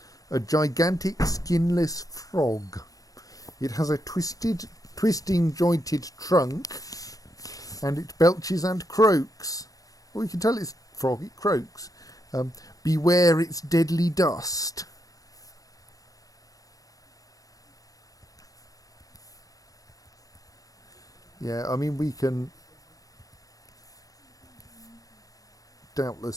A gigantic skinless frog. It has a twisting jointed trunk, and it belches and croaks. Well, you can tell it's a frog, it croaks. Beware its deadly dust. Yeah, I mean, we can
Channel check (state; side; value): late; right; 0.17 ms